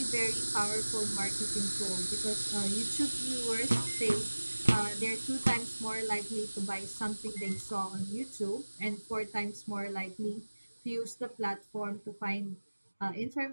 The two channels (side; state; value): both; inverted; correlation -1.00